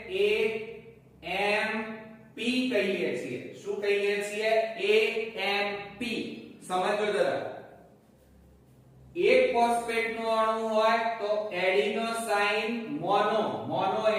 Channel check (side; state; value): both; identical; correlation 1.00